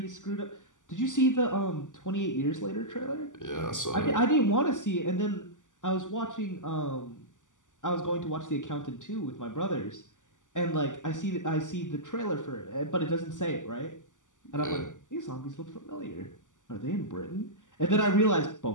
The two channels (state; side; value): late; right; 0.87 ms